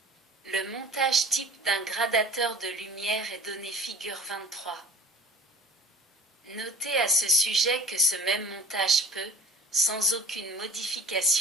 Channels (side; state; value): both; normal; correlation 0.45